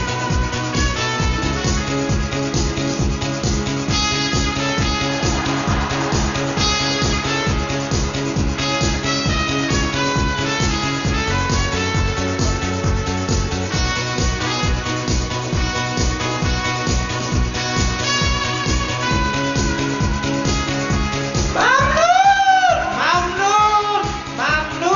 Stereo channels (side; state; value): both; identical; correlation 1.00